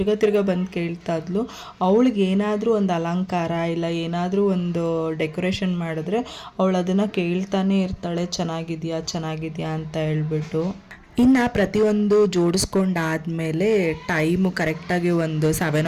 ತಿರ್ಗ ಬಂದು ಕೇಳ್ತಾ ಇದ್ಲು. ಅವಳಿಗೆ ಏನಾದರೂ ಒಂದು ಅಲಂಕಾರ ಇಲ್ಲ ಏನಾದರೂ ಒಂದು ಡೆಕೋರೇಷನ್ ಮಾಡಿದ್ರೆ ಅವಳು ಅದನ್ನು ಕೇಳ್ತಾನೆ ಇರ್ತಾಳೆ, ಚೆನ್ನಾಗಿದೆಯಾ ಅಂತ ಹೇಳ್ಬಿಟ್ಟು. ಇನ್ನು ಪ್ರತಿಯೊಂದು ಜೋಡಿಸ್ಕೊಂಡಾದಮೇಲೆ ಟೈಮು ಕರೆಕ್ಟಾಗಿ ಒಂದು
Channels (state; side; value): identical; both; correlation 1.00